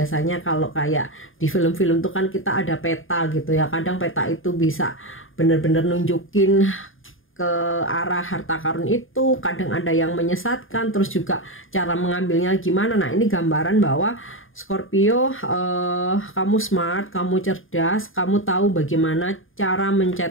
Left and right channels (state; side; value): late; right; 0.59 ms